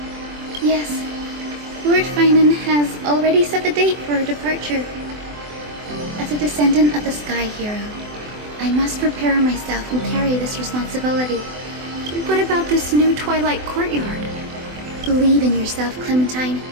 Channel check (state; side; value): late; left; 24 ms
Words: Yes. Lord Finan has already set the date for our departure. As a descendant of the Sky Hero, I must prepare myself and carry this responsibility. What about this new Twilight Courtyard? Believe in yourself, Clementine.